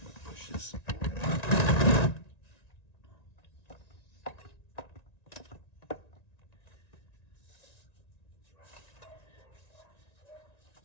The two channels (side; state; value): right; late; 1.9 ms